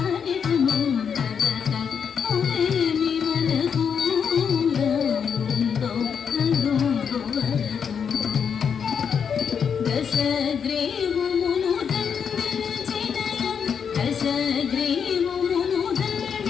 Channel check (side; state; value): right; quieter; 7.0 dB